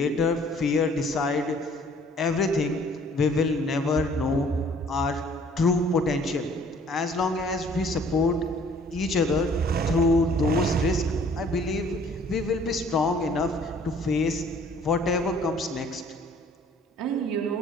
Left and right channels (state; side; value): normal; both; correlation 0.56